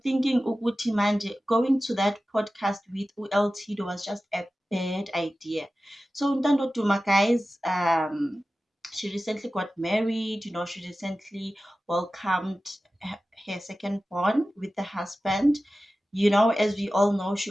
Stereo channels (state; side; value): normal; both; correlation 0.95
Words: thinking Uguti Manje going to that podcast with ULT was just a bad idea. So Ntando Duma, guys, she recently got married. She recently welcomed her second born with the husband. As we all know, she